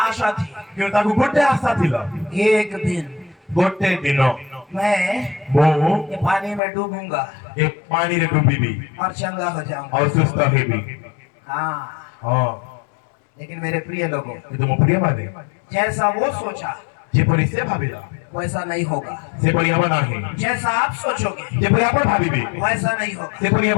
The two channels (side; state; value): right; drops out; at 6.6 s